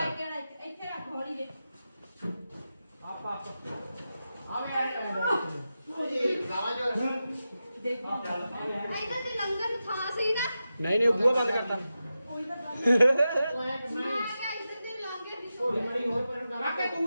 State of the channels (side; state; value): both; inverted; correlation -0.91